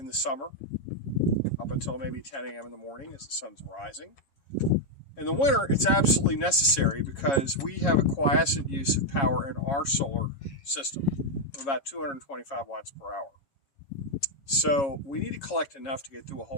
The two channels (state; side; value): late; right; 7.2 ms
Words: the summer up until maybe 10 a.m. in the morning as the sun's rising. In the winter, it's absolutely necessary because we have a quiescent use of power in our solar system of about 225 watts per hour. So we need to collect enough to get through a